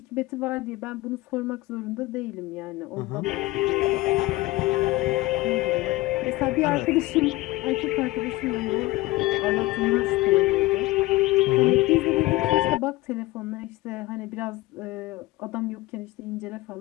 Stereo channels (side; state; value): right; quieter; 19.5 dB